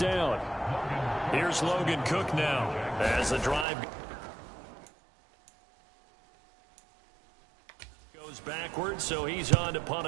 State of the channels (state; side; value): drops out; left; at 3.7 s